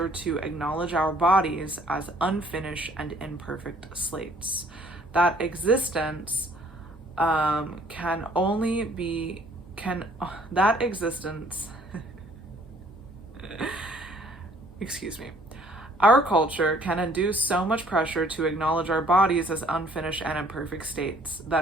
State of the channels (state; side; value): normal; both; correlation 0.59